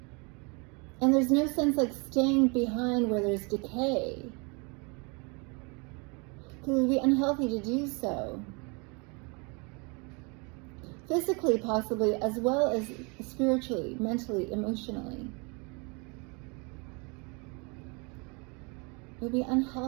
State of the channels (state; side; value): quieter; left; 31.4 dB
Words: And there's no sense like staying behind where there's decay. Because it would be unhealthy to do so. Physically, possibly, as well as spiritually, mentally, emotionally. It would be